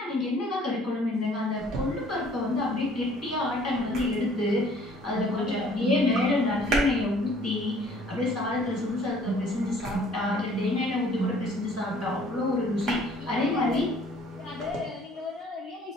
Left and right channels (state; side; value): normal; both; correlation 0.56